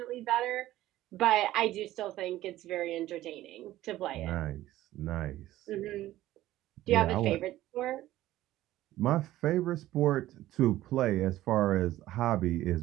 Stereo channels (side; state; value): left; quieter; 15.0 dB